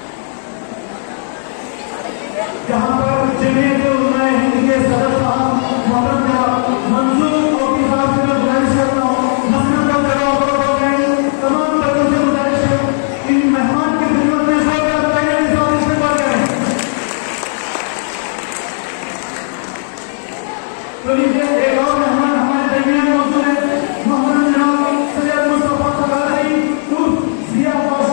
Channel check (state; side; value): silent; right; digital silence